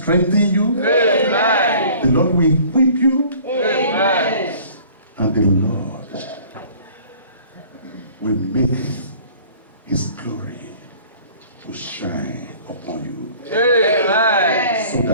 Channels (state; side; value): inverted; both; correlation -0.50